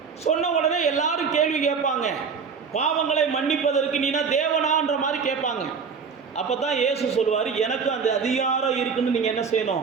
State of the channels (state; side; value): quieter; left; 5.8 dB